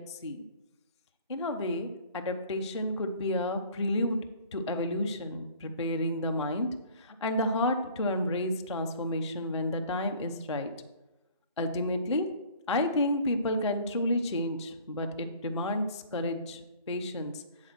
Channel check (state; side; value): inverted; both; correlation -0.50